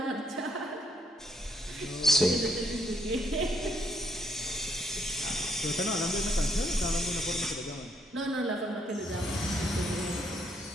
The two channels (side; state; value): both; normal; correlation 0.72